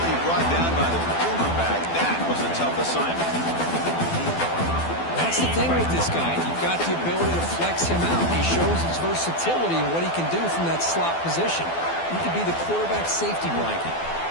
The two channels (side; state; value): right; late; 12 ms